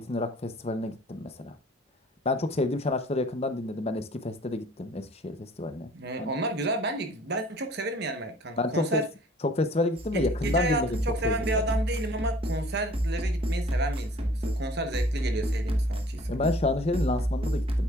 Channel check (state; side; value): normal; both; correlation 0.53